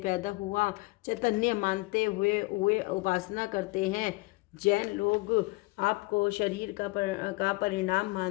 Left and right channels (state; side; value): quieter; right; 23.9 dB